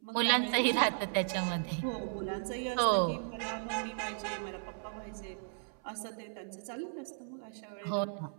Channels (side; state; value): left; silent; 54 dB below the other